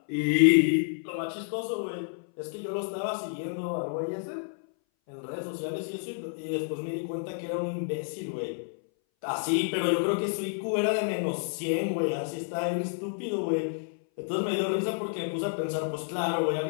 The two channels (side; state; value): right; silent; 58 dB below the other